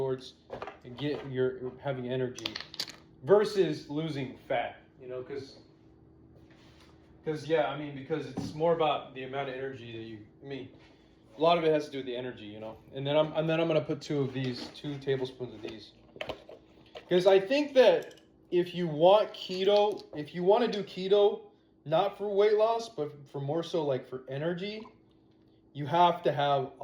and get your having energy versus losing fat. You know, because yeah, I mean, because it's more about the amount of energy that you. I mean, a lot of it has to do with the energy, you know. And then I'm gonna put 2 tablespoons of these, because I think that if you want to do keto, not for weight loss, but for more so like for energy, you have to have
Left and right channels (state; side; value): identical; both; correlation 1.00